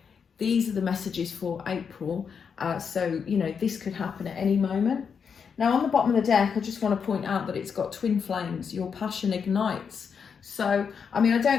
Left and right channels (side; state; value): right; quieter; 6.5 dB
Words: These are the messages for April. So, you know, this could happen at any moment. Now, on the bottom of the deck, I just want to point out that it's got twin flames. Your passion ignites. So, I mean, I